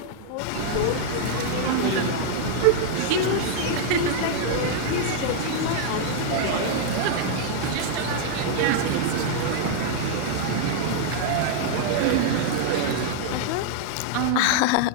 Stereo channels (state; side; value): different; both; correlation -0.01